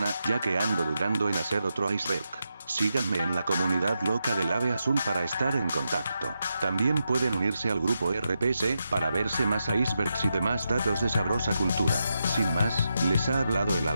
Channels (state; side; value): inverted; both; correlation -0.86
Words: ya que ando dudando en hacer otro iceberg. Síganme en la comunidad loca del Ave Azul para estar en contacto. También pueden unirse al grupo RPC, para verse más icebergs y demás datos de sabrosa cultura. Sin más, les ha hablado el